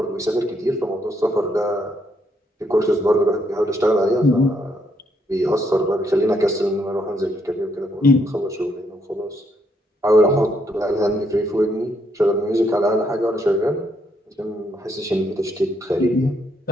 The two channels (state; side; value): normal; both; correlation 0.74